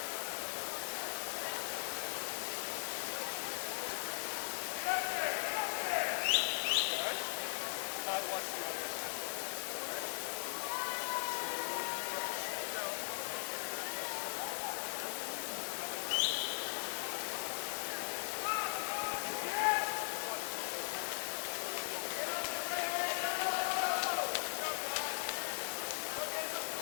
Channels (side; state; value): right; silent; 52 dB below the other